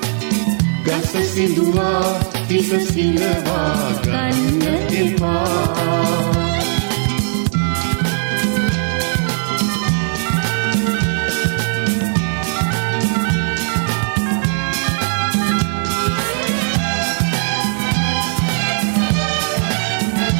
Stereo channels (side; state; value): left; silent; digital silence